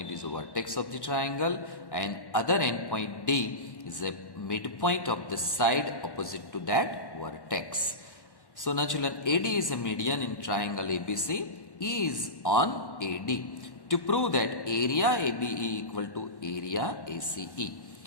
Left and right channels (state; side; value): late; right; 1.1 ms